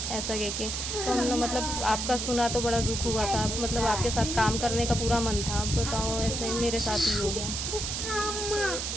ऐसा कह के। तो हम लोग मतलब आपका सुना तो बड़ा दुख हुआ था, मतलब आपके साथ काम करने का पूरा मन था। अब बताओ ऐसे मेरे साथ ही हो गया।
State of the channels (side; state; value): right; noise; hiss, 3 dB below the sound